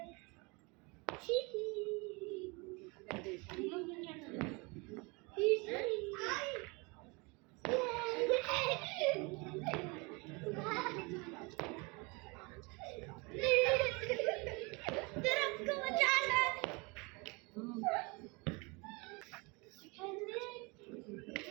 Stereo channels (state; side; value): quieter; left; 28.2 dB